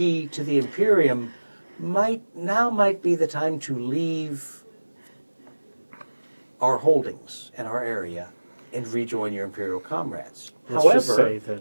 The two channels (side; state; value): both; inverted; correlation -1.00